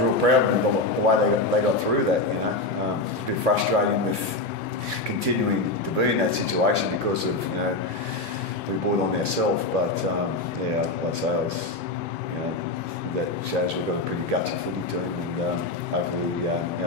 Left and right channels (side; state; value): right; quieter; 3.0 dB